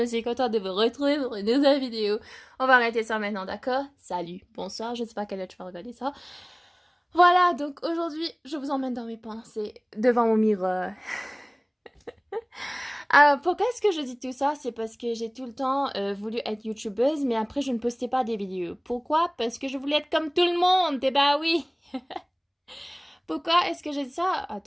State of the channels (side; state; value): both; identical; correlation 1.00